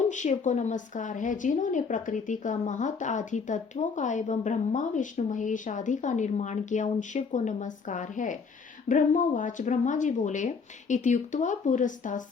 शिव को नमस्कार है। जिन्होंने प्रकृति का महत आदि तत्वों का एवं ब्रह्मा विष्णु महेश आदि का निर्माण किया, उन शिव को नमस्कार है। ब्रह्मवाच, ब्रह्मा जी बोले, इत्युक्त्वा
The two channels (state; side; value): quieter; right; 5.2 dB